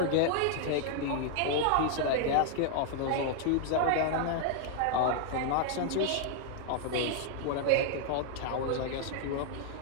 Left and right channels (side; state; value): both; different; correlation 0.00